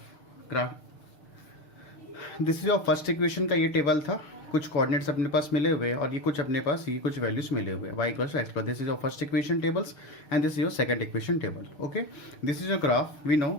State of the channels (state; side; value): late; right; 6.6 ms